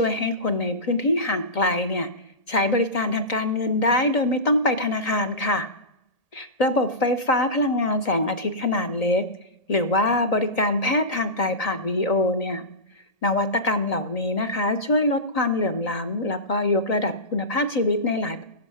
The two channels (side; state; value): right; late; 1.8 ms